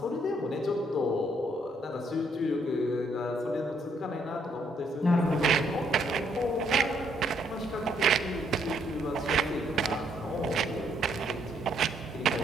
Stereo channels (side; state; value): both; normal; correlation 0.71